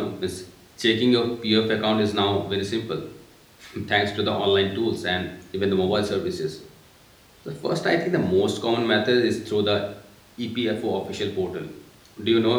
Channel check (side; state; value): both; identical; correlation 1.00